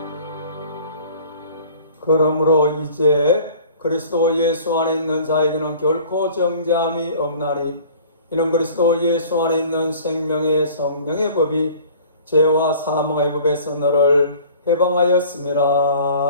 그러므로 이제 그리스도 예수 안에 있는 자에게는 결코 정죄함이 없나니 이는 그리스도 예수 안에 있는 생명의 성령의 법이 죄와 사망의 법에서 너를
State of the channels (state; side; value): inverted; both; correlation -0.48